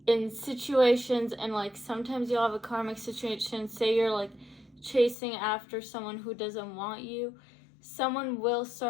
in situations. And sometimes you'll have a karmic situation, say you're chasing after someone who doesn't want you. Someone will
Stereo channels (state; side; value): drops out; right; at 5.2 s